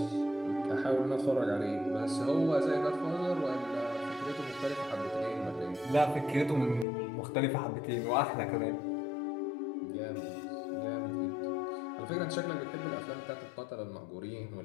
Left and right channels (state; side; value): drops out; right; at 6.9 s